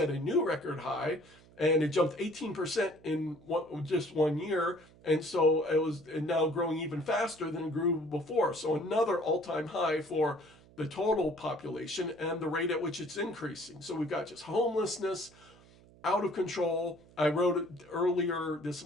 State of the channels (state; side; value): noise; right; hum, 25 dB below the sound